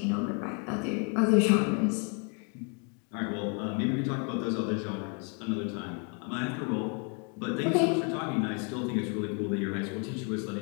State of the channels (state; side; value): quieter; right; 37.2 dB